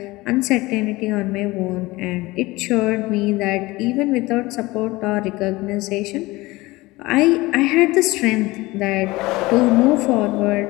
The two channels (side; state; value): right; quieter; 20.7 dB